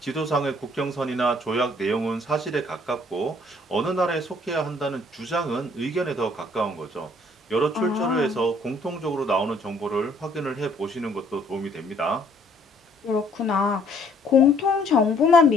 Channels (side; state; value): both; normal; correlation 0.62